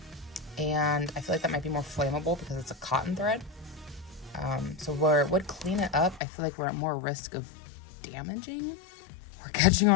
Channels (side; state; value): right; drops out; at 6.2 s